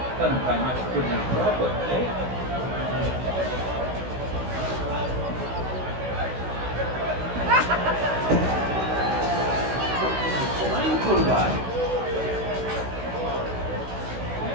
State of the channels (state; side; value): late; left; 16 ms